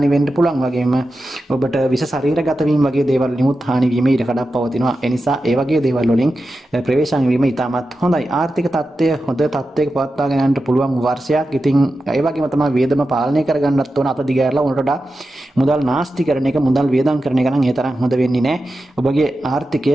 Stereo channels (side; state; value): both; normal; correlation 0.91